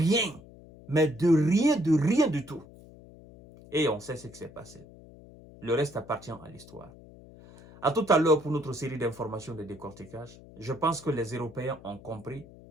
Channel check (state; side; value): noise; left; hum, 20 dB below the sound